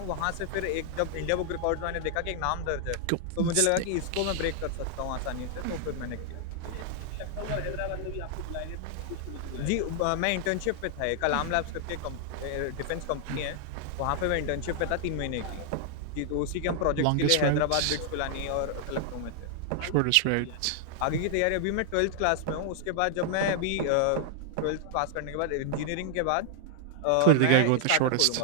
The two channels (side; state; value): both; different; correlation 0.00